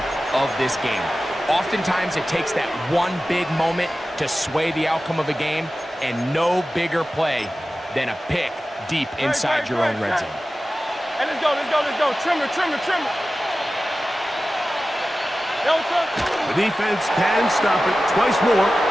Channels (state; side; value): normal; both; correlation 0.95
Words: of this game. Oftentimes, it takes that one big moment to sway the outcome of a game, and no bigger play than a pick deep inside your own red zone. Hey, let's go. Trimmer. The defense can stop it twice more